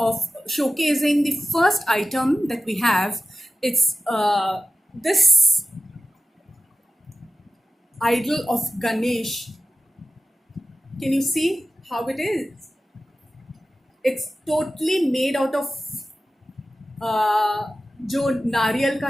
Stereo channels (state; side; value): normal; both; correlation 0.94